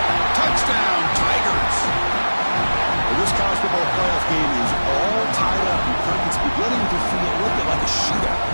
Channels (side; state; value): both; inverted; correlation -1.00